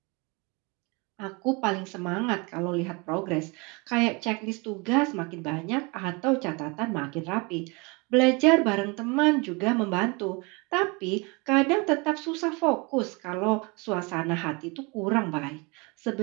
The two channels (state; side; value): quieter; left; 28.8 dB